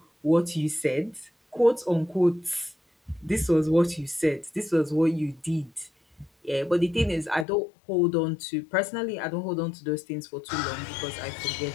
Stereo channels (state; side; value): drops out; right; at 7.5 s